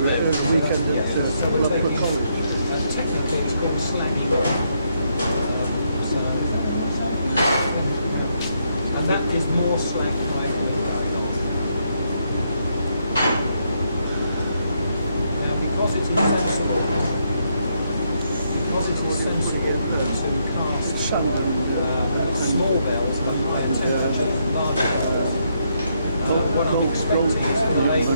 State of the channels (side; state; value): both; inverted; correlation -0.76